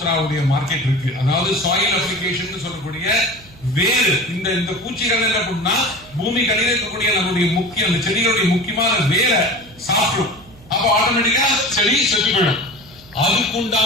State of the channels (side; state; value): right; noise; hum, 23 dB below the sound